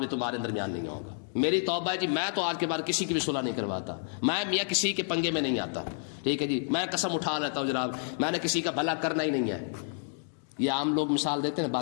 تمہارے درمیان نہیں آؤں گا، میری توبہ ہے جی میں تو آج کے بعد کسی کی بھی صلح نہیں کرواتا، میں میاں کسی کے پنگے میں نہیں آتا، ٹھیک ہے جی، میں قسم اٹھا لیتا ہوں جناب میں نے کسی کا بھلا کرنا ہی نہیں ہے۔ یہ عام لوگ مثال دیتے ہیں،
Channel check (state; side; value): silent; right; digital silence